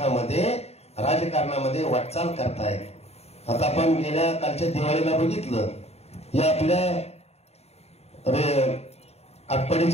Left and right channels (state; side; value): late; right; 0.30 ms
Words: राजकारणामध्ये वाटचाल करतायत. आता आपण गेल्या कालच्या दिवाळीला बघितलं, या आपल्या